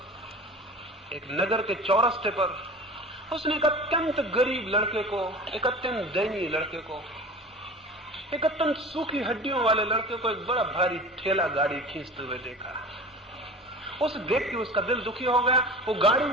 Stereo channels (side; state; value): both; normal; correlation 0.37